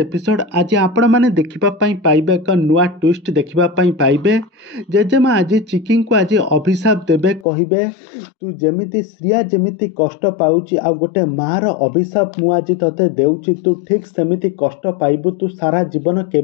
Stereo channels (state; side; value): drops out; right; at 7.5 s